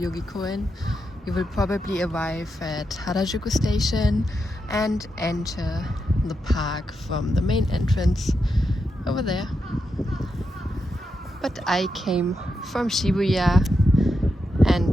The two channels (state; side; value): normal; both; correlation 0.85